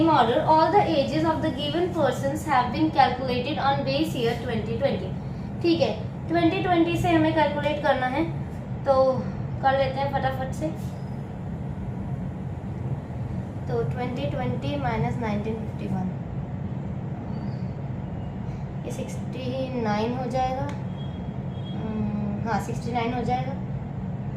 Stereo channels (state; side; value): identical; both; correlation 1.00